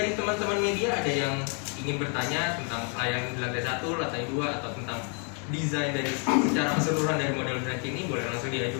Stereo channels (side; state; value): right; quieter; 39.0 dB